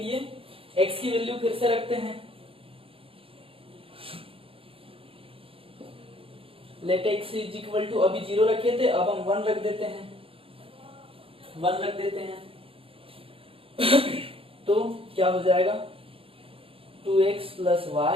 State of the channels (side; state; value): left; late; 0.27 ms